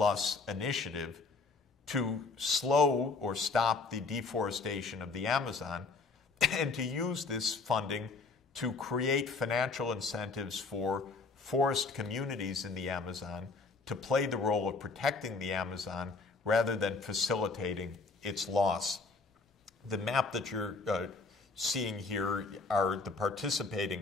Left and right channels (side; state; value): right; quieter; 4.0 dB